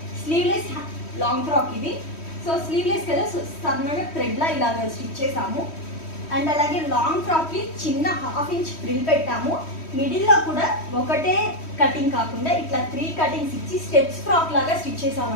స్లీవ్లెస్ లాంగ్ ఫ్రాక్ ఇది. సో స్లీవ్లెస్ కదా, సో సన్నగా థ్రెడ్లా ఇలాగ స్టిచ్ చేసాము. అండ్ అలాగే లాంగ్ ఫ్రాక్కి చిన్న 1/2 ఇంచ్ ఫ్రిల్ పెట్టాము. మిడిల్లో కూడా ఒకటే కటింగ్ కాకుండా ఇట్లా 3 కటింగ్స్ ఇచ్చి స్టెప్స్ ఫ్రాక్ లాగా స్టిచ్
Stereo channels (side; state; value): right; late; 3.1 ms